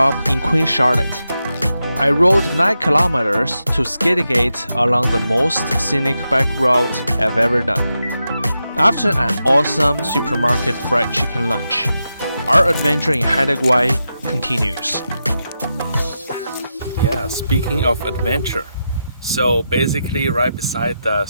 in Queen Charlotte. I rode 9 kilometers to Skidegate along the most scenic bike route I've ever done. After an awesome supermarket fried chicken lunch, our adventure in Haida Gwaii continues. Yeah, speaking of adventure. So basically right beside the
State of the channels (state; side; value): inverted; both; correlation -0.88